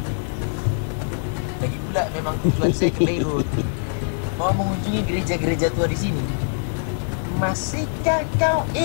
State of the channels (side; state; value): right; silent; digital silence